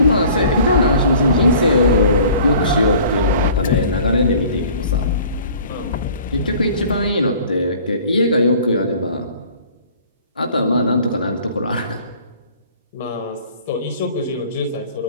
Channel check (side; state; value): both; inverted; correlation -0.49